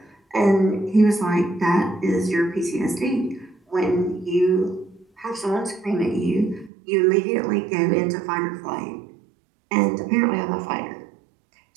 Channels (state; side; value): drops out; left; at 6.7 s